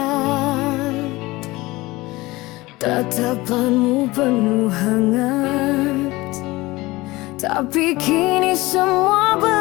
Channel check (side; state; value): right; quieter; 20.5 dB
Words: tatapanmu penuh hangat. Tapi kini semua